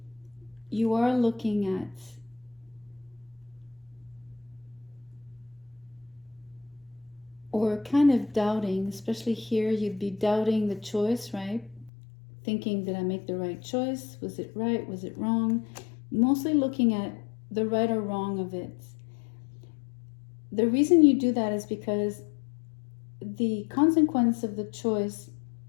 you are looking at or kind of doubting, especially here, you'd be doubting the choice, right? Thinking, did I make the right choice? Was it right? Was it wrong? Mostly looking at the right or wrong of it. The reason you do that is because the consequence of the choice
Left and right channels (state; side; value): drops out; right; at 11.9 s